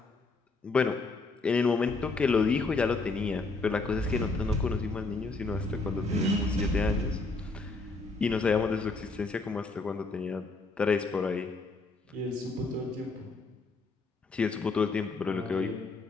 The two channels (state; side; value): quieter; right; 3.7 dB